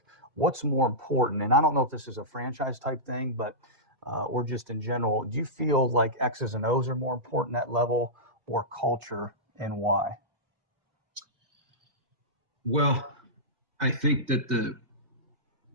what's more important? And I don't know if this is a franchise type thing, but or just in general, do you feel like X's and O's are more important at level or culture, and why? Well, I think that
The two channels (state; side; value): late; left; 2.1 ms